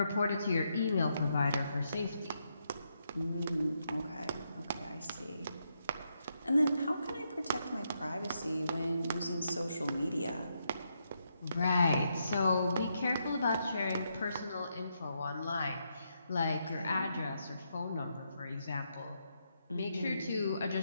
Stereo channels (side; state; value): both; inverted; correlation -0.80